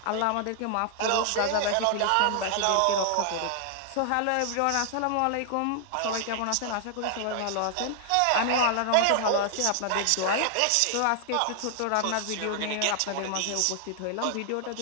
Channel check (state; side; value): different; both; correlation 0.00